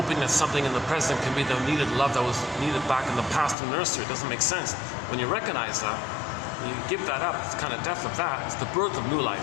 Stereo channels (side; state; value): right; drops out; at 3.6 s